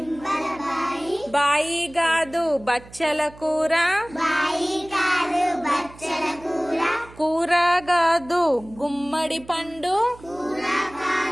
బాయి గాదు బచ్చల కూర కూర గాదు గుమ్మడి పండు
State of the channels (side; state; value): right; noise; hum, 21 dB below the sound